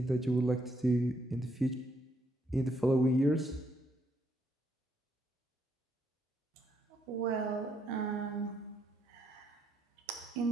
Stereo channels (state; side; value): normal; both; correlation 0.74